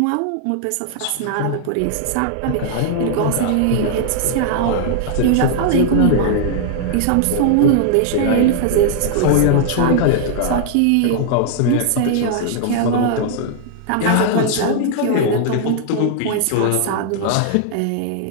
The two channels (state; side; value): different; both; correlation -0.01